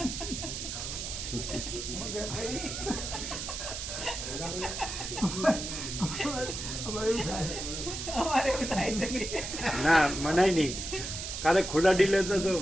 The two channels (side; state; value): right; noise; hiss, 6 dB below the sound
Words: ના મનાય નહીં. કાલે ખુલ્લા ડીલે તો